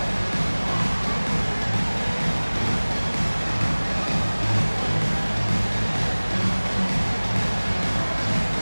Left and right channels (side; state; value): both; inverted; correlation -1.00